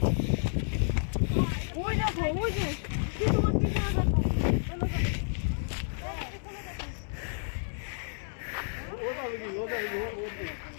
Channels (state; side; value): silent; right; digital silence